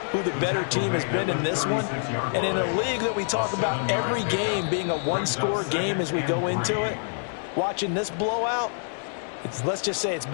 who the better team has been in this one. And in a league that we talk about every game being a one-score game as we go into it, watching this blowout, let's just say it's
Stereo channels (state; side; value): silent; right; digital silence